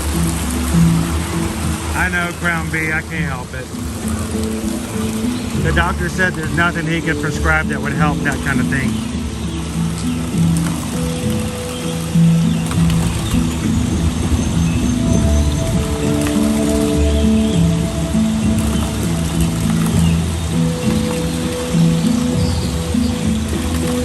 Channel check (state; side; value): identical; both; correlation 1.00